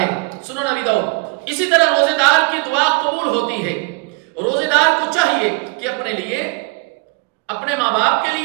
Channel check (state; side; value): quieter; left; 28.4 dB